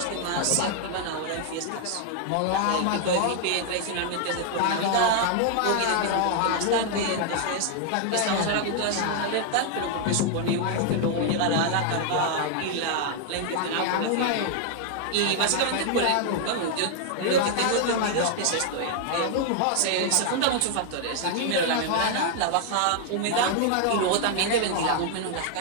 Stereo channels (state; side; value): different; both; correlation 0.00